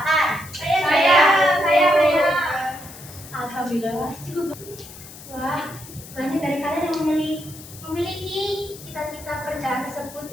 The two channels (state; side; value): noise; left; hiss, 16 dB below the sound